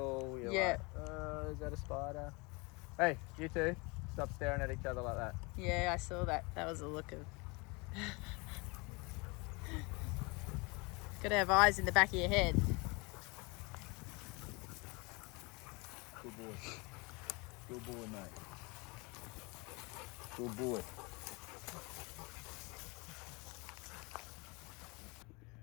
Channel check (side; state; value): right; quieter; 28.0 dB